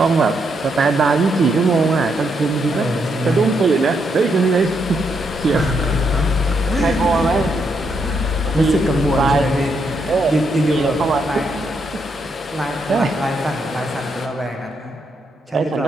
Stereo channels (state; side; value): normal; both; correlation 0.78